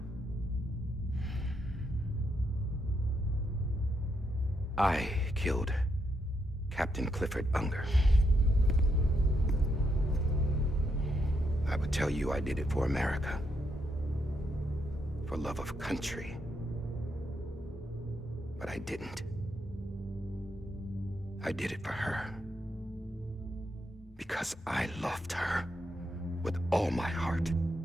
I killed Captain Clifford Unger. I would tell you I did it for America. For love of country. But I didn't. I did it for her. Because I loved her with all my heart.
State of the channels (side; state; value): both; normal; correlation 0.79